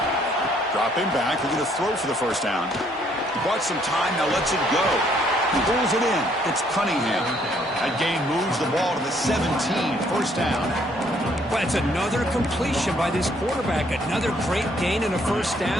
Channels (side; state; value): both; normal; correlation 0.66